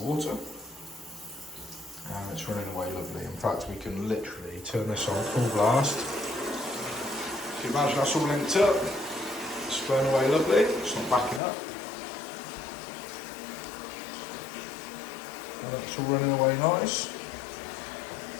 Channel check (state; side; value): drops out; right; at 11.4 s